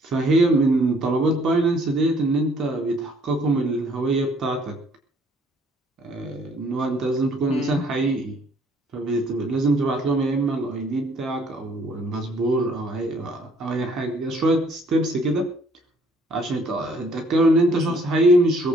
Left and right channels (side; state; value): both; normal; correlation 0.62